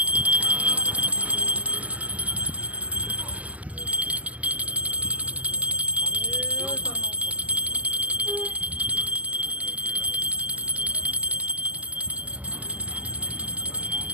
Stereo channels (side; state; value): left; late; 0.074 ms